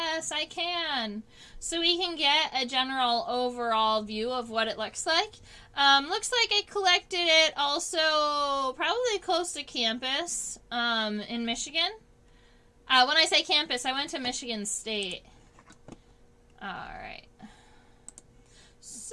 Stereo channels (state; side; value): identical; both; correlation 1.00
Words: I can. So we can get a general overall view of what it looks like. Looks like I collected it also probably close to campus in Michigan. When I say campus, I went to Michigan State. Alright.